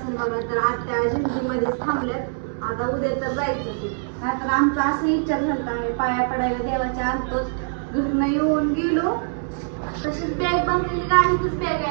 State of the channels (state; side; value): silent; left; digital silence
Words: बघा, तर आत्या जिंतीमध्ये थांबल्यात. आता उद्या तर जायचं ते. नाहीतर आमचा असं विचार झाला, आम्ही पाया पडायला देवाच्या आणतोच. घरनं येऊन गेलो तशीच बॅग बंदली, गाडीतच बॅग